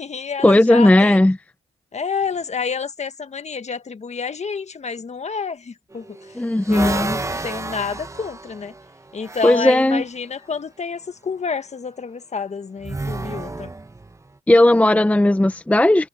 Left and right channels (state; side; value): normal; both; correlation 0.87